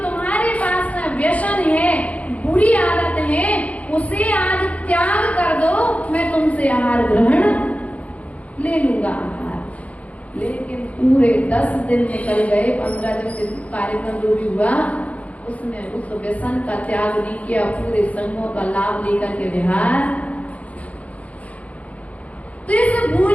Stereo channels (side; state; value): right; late; 0.068 ms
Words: तुम्हारे पास में व्यसन है, बुरी आदत है, उसे आज त्याग कर दो, मैं तुमसे आहार ग्रहण ले लूंगा आहार। लेकिन पूरे 10 दिन निकल गए, 15 दिन कार्यक्रम जो भी हुआ, उसने उस व्यसन का त्याग नहीं किया, पूरे संघों का लाभ लेकर के विहार। तो इस भूल